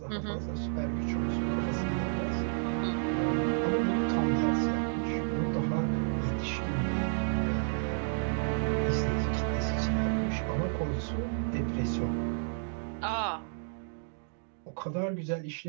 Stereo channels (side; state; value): left; silent; digital silence